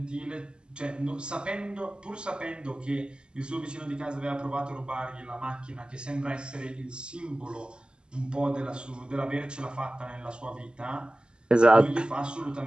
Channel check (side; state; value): left; late; 0.049 ms